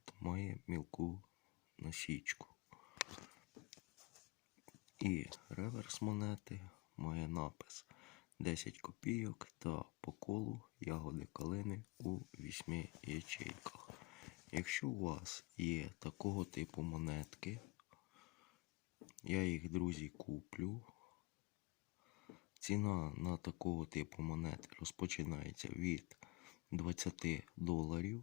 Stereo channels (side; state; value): right; quieter; 24.0 dB